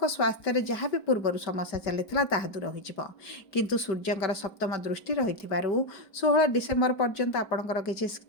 ସ୍ୱାସ୍ଥ୍ୟରେ ଯାହା ବି ପୂର୍ବରୁ ସମସ୍ୟା ଚାଲିଥିଲା ତାହା ଦୂର ହୋଇଯିବ। କିନ୍ତୁ ସୂର୍ଯ୍ୟଙ୍କର ସପ୍ତମ ଦୃଷ୍ଟି ରହିଥିବାରୁ 16 ଡିସେମ୍ବର ପର୍ଯ୍ୟନ୍ତ ଆପଣଙ୍କର କିଛି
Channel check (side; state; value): right; late; 4.8 ms